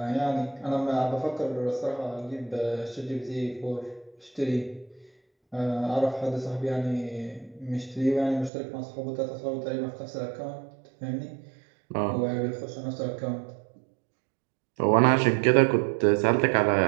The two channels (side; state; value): left; drops out; at 8.5 s